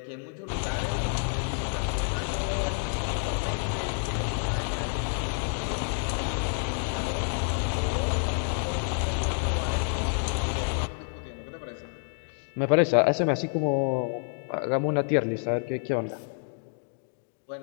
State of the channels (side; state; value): right; silent; digital silence